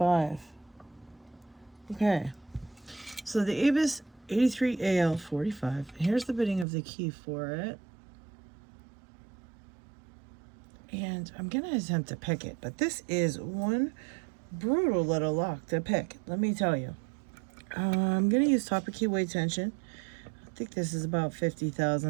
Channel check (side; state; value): left; drops out; at 6.7 s